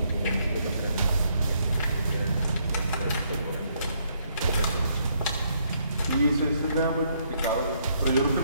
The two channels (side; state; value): both; inverted; correlation -0.72